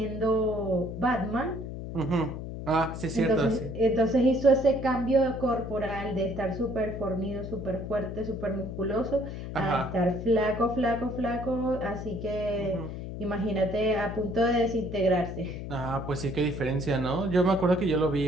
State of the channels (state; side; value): noise; left; hum, 8 dB below the sound